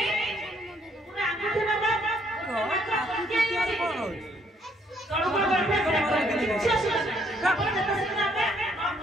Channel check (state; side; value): normal; both; correlation 0.68